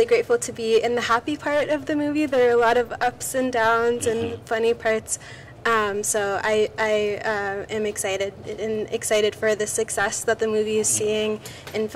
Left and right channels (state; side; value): identical; both; correlation 1.00